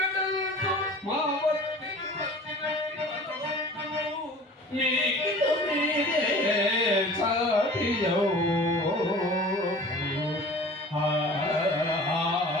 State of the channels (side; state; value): both; normal; correlation 0.43